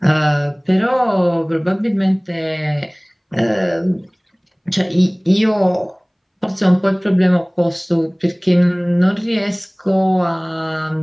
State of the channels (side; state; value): both; identical; correlation 1.00